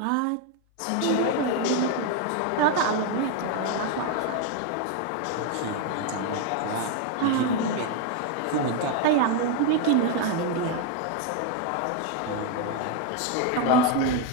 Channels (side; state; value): both; different; correlation 0.01